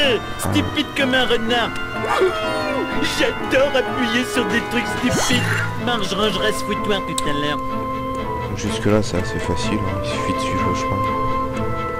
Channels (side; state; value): both; identical; correlation 1.00